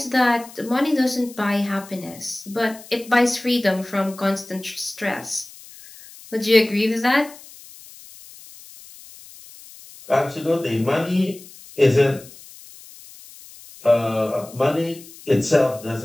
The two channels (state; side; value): noise; left; hiss, 20 dB below the sound